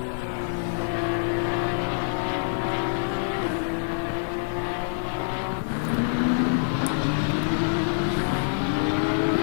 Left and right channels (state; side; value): silent; right; digital silence